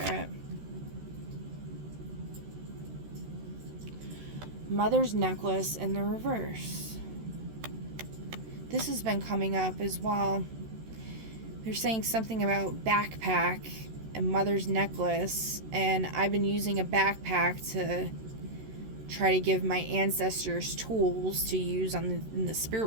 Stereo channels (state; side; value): late; left; 13 ms